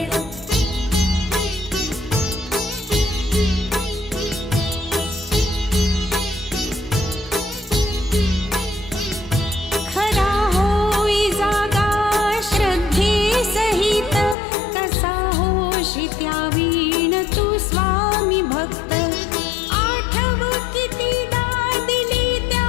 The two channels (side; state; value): right; drops out; at 14.4 s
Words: खरा होई जागा श्रद्धे सहित कसा होशी त्यावीण तू स्वामी भक्त आठव कितीदा दिली